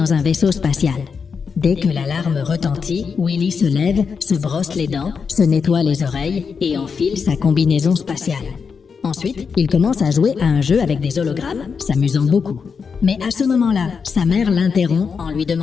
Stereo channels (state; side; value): quieter; right; 5.8 dB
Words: un vaisseau spatial. Dès que l'alarme retentit, Willy se lève, se brosse les dents, se nettoie les oreilles et enfile sa combinaison spatiale. Ensuite, il commence à jouer à un jeu avec des hologrammes, s'amusant beaucoup. Mais à ce moment-là, sa mère l'interrompt en lui